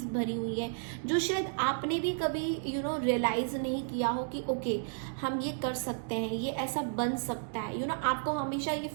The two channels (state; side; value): silent; left; digital silence